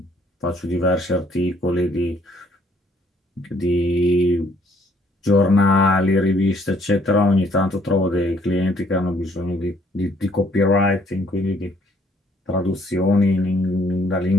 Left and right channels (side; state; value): both; normal; correlation 0.65